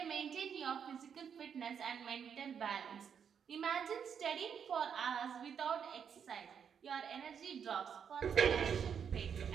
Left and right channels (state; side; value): quieter; left; 7.5 dB